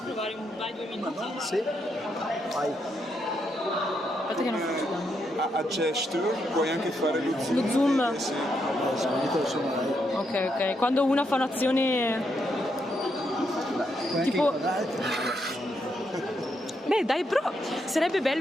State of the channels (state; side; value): normal; both; correlation 0.79